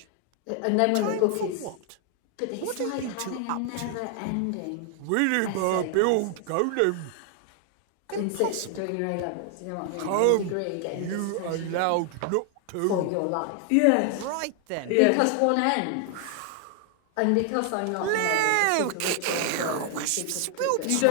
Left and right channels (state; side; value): different; both; correlation 0.00